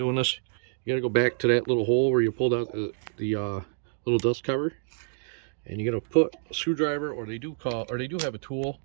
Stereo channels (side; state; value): left; silent; digital silence